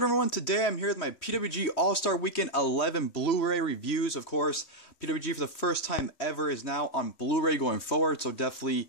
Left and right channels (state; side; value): late; right; 3.1 ms